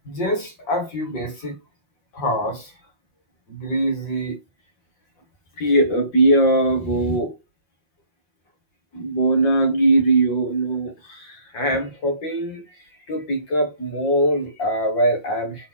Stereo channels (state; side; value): late; right; 6.4 ms